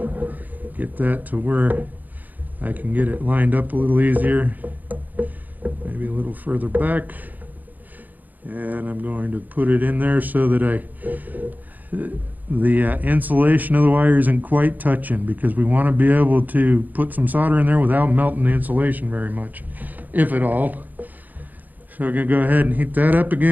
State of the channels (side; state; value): left; late; 0.083 ms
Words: get that to where I can get it lined up a little easier, maybe a little further back, and I'm going to put it in there so that the insulation of the wire isn't quite touching, because we want to be able to put some solder in there without melting the insulation very much, if at all. So we're going to go ahead and heat that up